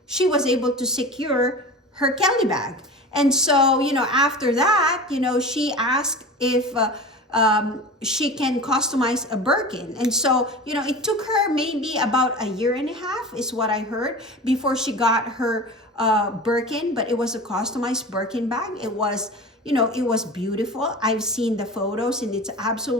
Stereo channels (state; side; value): normal; both; correlation 0.33